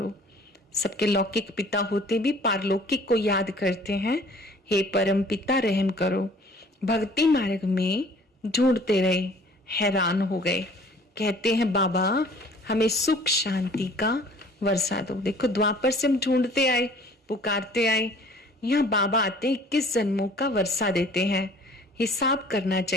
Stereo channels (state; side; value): normal; both; correlation 0.52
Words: सबके लौकिक पिता होते भी पारलौकिक को याद करते हैं, हे परम पिता रहम करो। भक्ति मार्ग में ढूंढते रहे, हैरान हो गए। कहते हैं बाबा हमें सुख शांति का वर्षा दो। देखो द्वापर से हम ढूंढते आए, पुकारते आए, यहाँ बाबा आते 21 जन्मों का वर्षा देते हैं। हिसाब करना